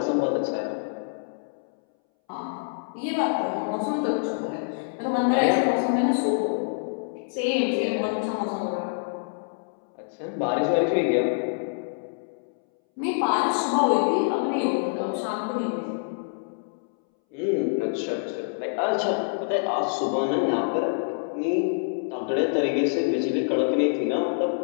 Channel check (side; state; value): right; silent; 61 dB below the other